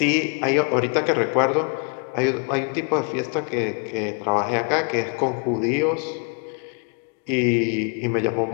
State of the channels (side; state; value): right; quieter; 39.7 dB